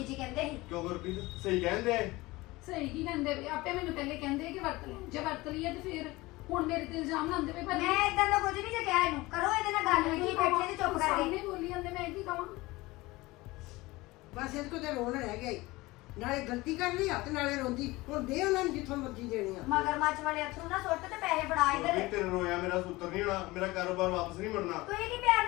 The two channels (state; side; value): quieter; right; 20.7 dB